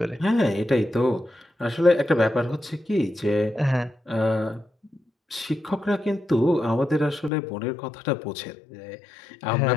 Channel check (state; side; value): drops out; right; at 7.3 s